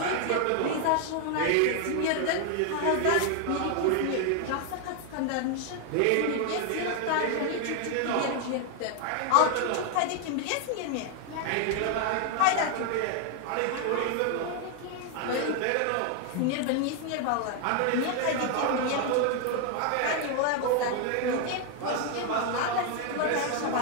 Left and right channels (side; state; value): both; different; correlation 0.00